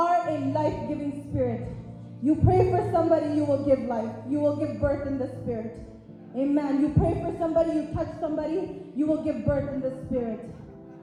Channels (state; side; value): identical; both; correlation 1.00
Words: a life-giving spirit. You pray for somebody, you will give life. You will give birth in the spirit. Amen. You pray for somebody, you touch somebody, you will give birth in the spirit.